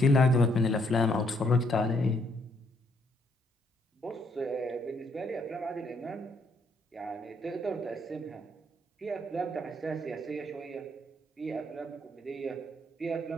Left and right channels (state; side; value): normal; both; correlation 0.70